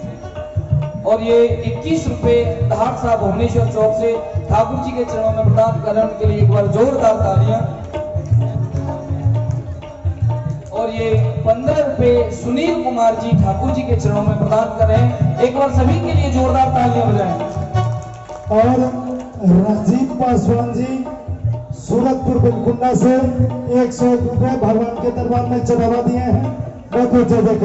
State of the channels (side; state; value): both; identical; correlation 1.00